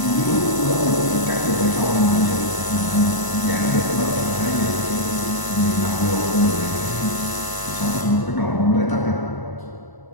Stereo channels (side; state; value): right; late; 1.0 ms